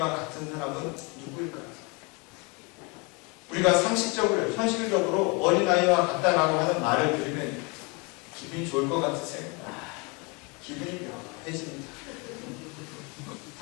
같은 사람은 누구일까요? 우리가 상식적으로, 현실적으로 어린 아이와 같다라고 하는 말을 들으면 기분이 좋을 것 같으세요? 기분이 묘해집니다.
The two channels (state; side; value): quieter; right; 30.0 dB